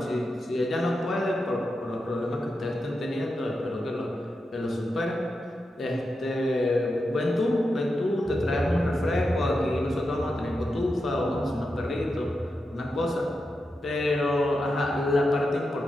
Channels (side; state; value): both; normal; correlation 0.88